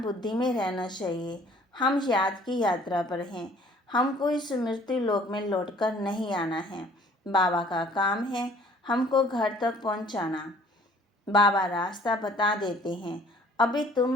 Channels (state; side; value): normal; both; correlation 0.55